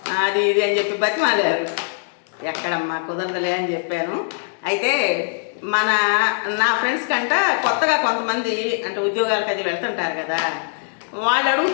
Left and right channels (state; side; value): silent; right; digital silence